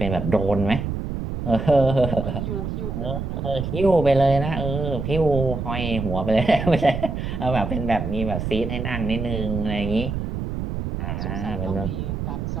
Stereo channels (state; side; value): noise; right; rumble, 4 dB below the sound